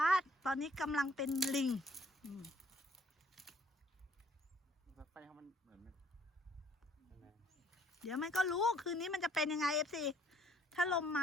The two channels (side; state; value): both; normal; correlation 0.63